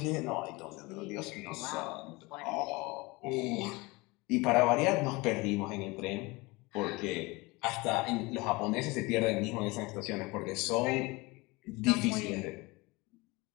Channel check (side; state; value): right; quieter; 24.0 dB